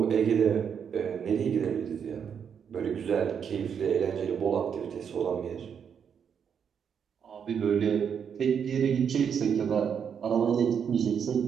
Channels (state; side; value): quieter; left; 7.4 dB